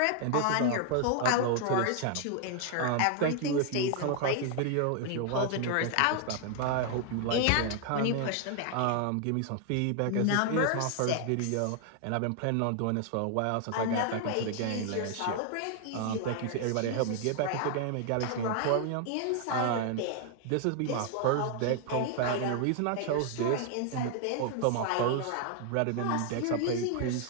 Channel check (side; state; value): both; different; correlation 0.00